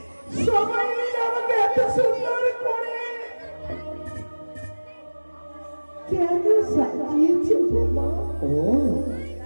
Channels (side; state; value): both; inverted; correlation -1.00